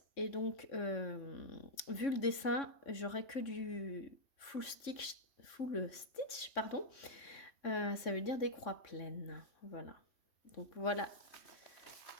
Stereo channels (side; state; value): right; late; 3.6 ms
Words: Et donc, vu le dessin, j'aurais que du full stitch, pardon. Ça veut dire des croix pleines. Voilà. Donc, voilà